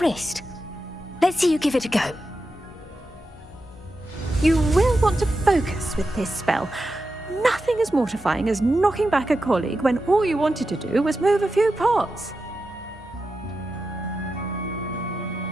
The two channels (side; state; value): both; normal; correlation 0.90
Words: Let's see you give it a go. You will want to focus with this spell. Nothing as mortifying as knocking back a colleague when all you wanted to do was move a few pots.